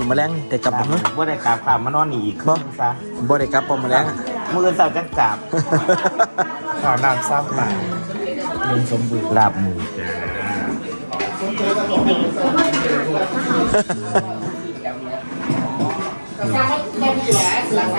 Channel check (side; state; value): both; inverted; correlation -1.00